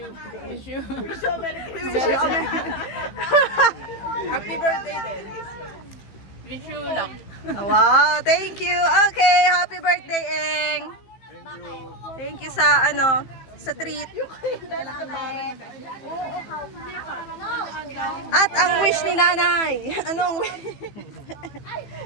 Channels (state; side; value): late; right; 15 ms